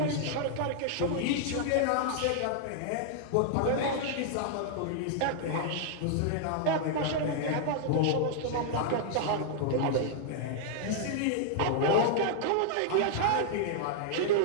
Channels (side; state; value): both; different; correlation -0.01